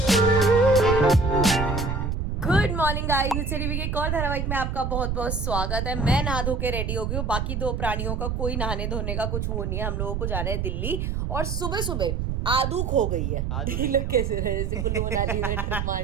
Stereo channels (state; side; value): noise; right; rumble, 1 dB below the sound